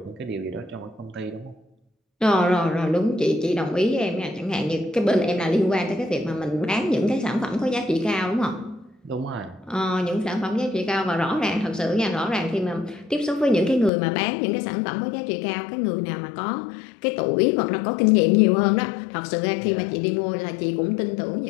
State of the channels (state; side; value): drops out; right; at 13.9 s